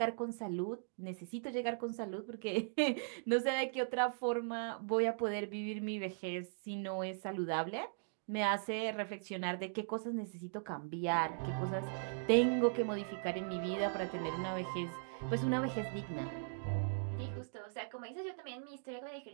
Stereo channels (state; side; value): silent; left; digital silence